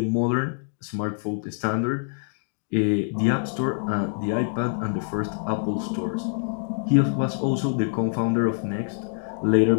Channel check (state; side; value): silent; right; digital silence